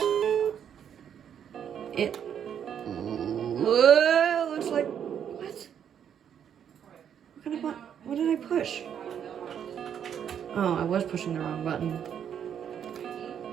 It looks like... What? What kind of button? What did I push? Oh, I was pushing the wrong button.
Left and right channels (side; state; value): left; quieter; 8.7 dB